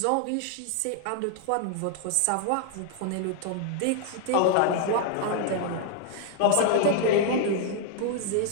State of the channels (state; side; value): different; both; correlation 0.00